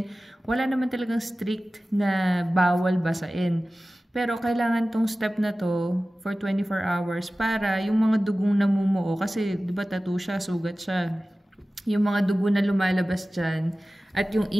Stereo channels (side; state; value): both; normal; correlation 0.96